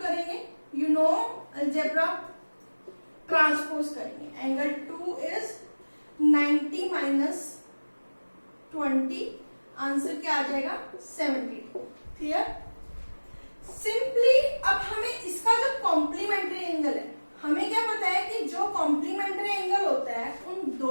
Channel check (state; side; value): inverted; both; correlation -1.00